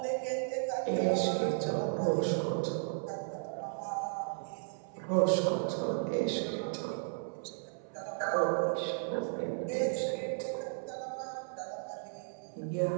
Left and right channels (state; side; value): silent; left; 55 dB below the other